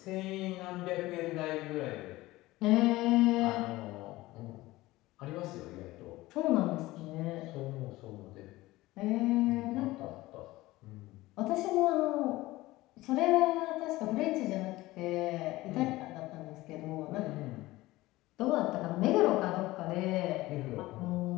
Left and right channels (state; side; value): quieter; right; 18.6 dB